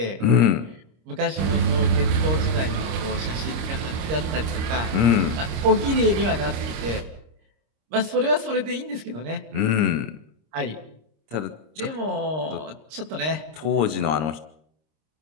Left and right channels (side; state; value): left; late; 26 ms